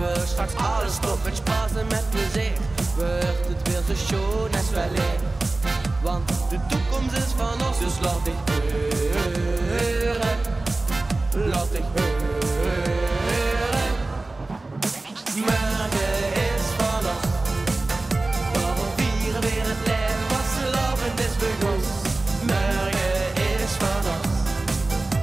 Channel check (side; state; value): left; quieter; 3.1 dB